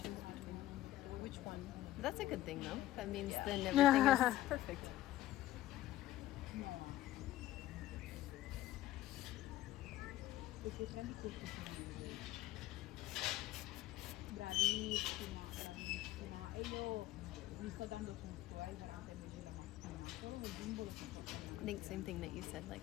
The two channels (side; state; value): right; quieter; 14.7 dB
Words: between which one. That's a good thing, though. That means then everything is perfect. Bravissima, bravissima. E io gli sto dando tutto, durante il mese della mattina. Solo nel bimbo lo sto I facendo. think same thing that you said, like